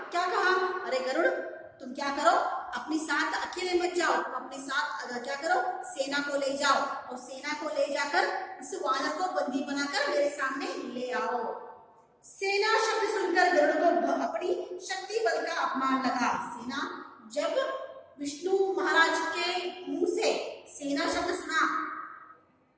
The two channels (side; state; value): both; identical; correlation 1.00